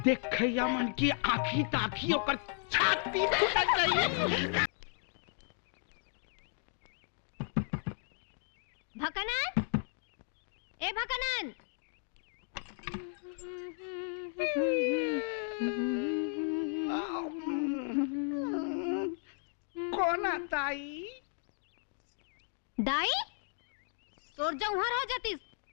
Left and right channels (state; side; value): silent; right; 55 dB below the other